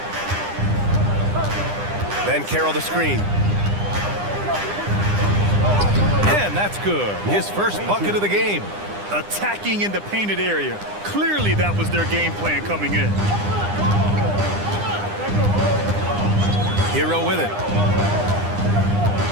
Banchero the screen. And that's good. His first bucket of the game. Attacking in the painted area. Clearly that was their game plan coming in. Hero with it.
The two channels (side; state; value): left; late; 9.9 ms